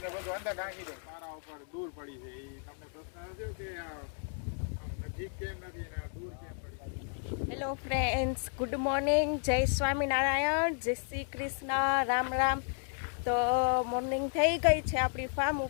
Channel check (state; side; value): silent; right; 56 dB below the other